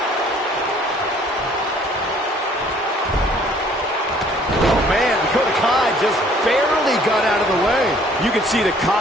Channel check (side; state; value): both; normal; correlation 0.58